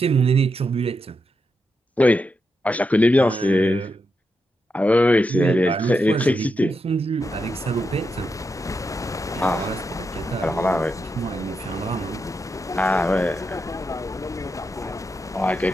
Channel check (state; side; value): normal; both; correlation 0.85